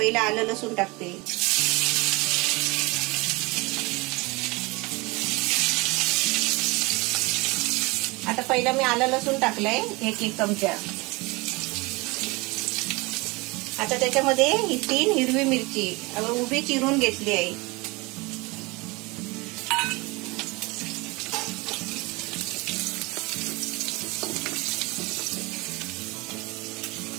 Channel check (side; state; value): left; quieter; 24.9 dB